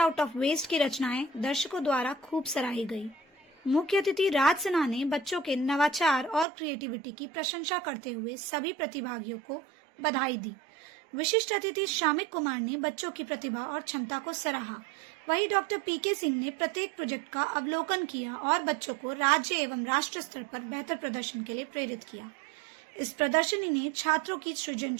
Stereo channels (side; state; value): left; drops out; at 6.5 s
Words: ऑफ वेस्ट की रचनाएं दर्शकों द्वारा खूब सराही गई। मुख्य अतिथि राज सिन्हा ने बच्चों के नवाचार और क्रिएटिविटी की प्रशंसा करते हुए सभी प्रतिभागियों को बधाई दी। विशिष्ट अतिथि शामिक कुमार ने बच्चों की प्रतिभा और क्षमता को सराहा। वहीं डॉक्टर पीके सिंह ने प्रत्येक प्रोजेक्ट का अवलोकन किया और बच्चों को राज्य एवं राष्ट्र स्तर पर बेहतर प्रदर्शन के लिए प्रेरित किया। इस प्रदर्शनी ने छात्रों की